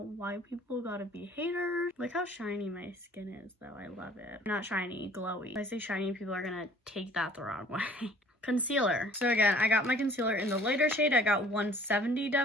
why people gotta be haters. Look how shiny my skin is though. I love it. Not shiny, glowy. If I say shiny, people are gonna take that the wrong way. Concealer. So again, I got my concealer in the lighter shade. I got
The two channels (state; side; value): normal; both; correlation 0.54